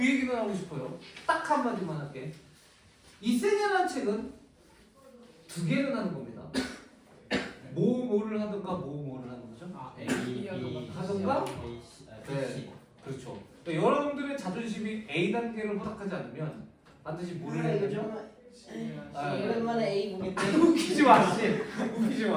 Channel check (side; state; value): both; identical; correlation 1.00